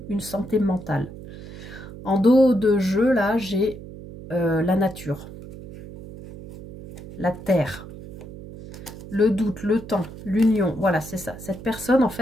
une santé mentale. En dos de jeu, là, j'ai la nature, la terre, le doute, le temps, l'union. Voilà, c'est ça. Cette personne, en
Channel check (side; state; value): right; noise; hum, 14 dB below the sound